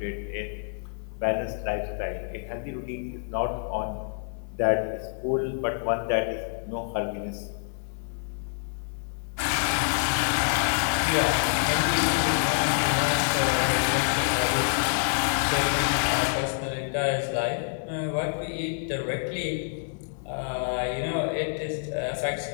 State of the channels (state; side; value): silent; right; 60 dB below the other